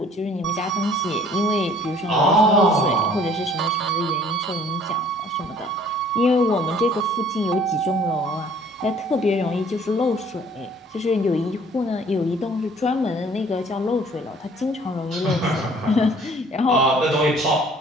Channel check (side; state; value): both; normal; correlation 0.55